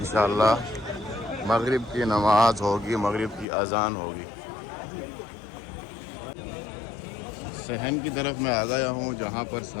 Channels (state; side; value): drops out; right; at 3.5 s